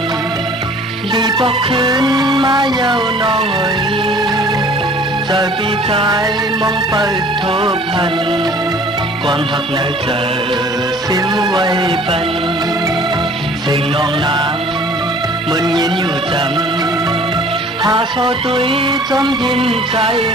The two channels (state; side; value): normal; both; correlation 0.51